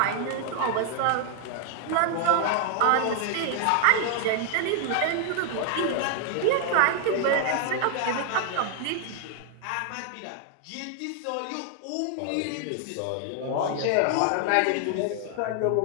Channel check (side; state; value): both; different; correlation 0.00